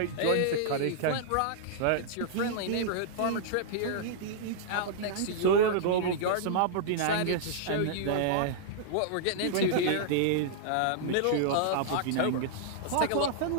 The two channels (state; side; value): different; both; correlation -0.02